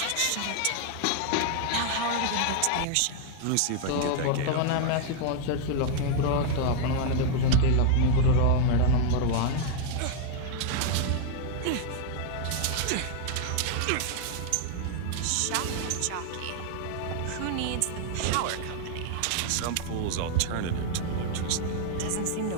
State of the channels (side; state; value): both; different; correlation 0.00